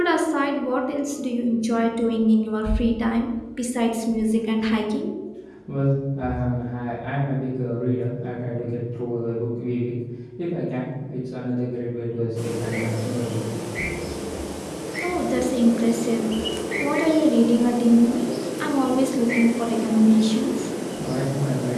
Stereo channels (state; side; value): identical; both; correlation 1.00